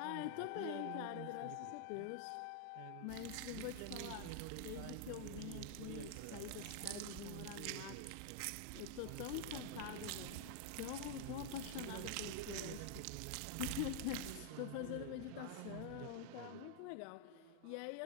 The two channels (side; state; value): both; different; correlation 0.00